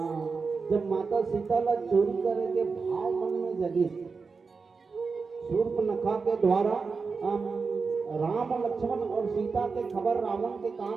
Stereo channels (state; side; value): quieter; left; 4.8 dB